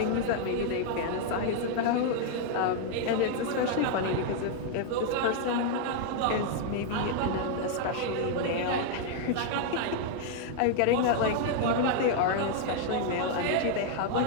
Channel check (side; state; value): both; different; correlation 0.00